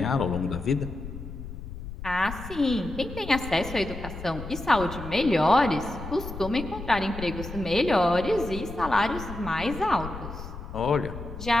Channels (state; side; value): noise; left; rumble, 10 dB below the sound